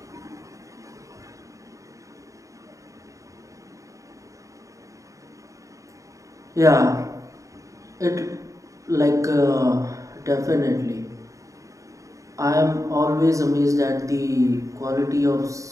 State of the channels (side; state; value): left; late; 0.16 ms